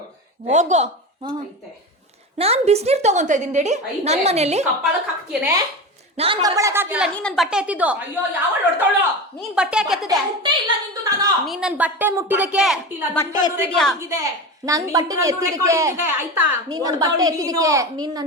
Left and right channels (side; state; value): both; normal; correlation 0.25